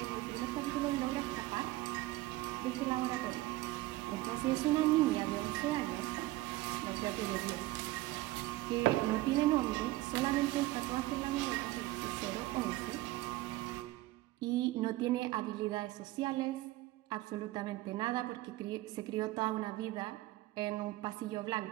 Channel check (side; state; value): left; quieter; 17.9 dB